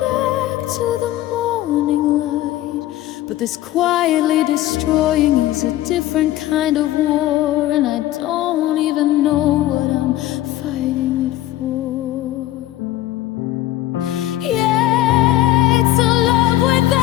back to the morning light. But this quietly destroying is a different kind of war, and I don't even know what I'm fighting it for. Yeah, it's a love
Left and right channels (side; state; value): right; quieter; 14.7 dB